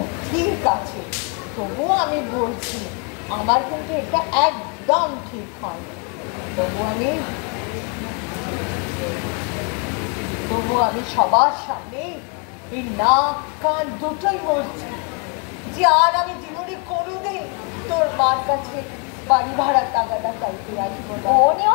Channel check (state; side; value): quieter; right; 36.4 dB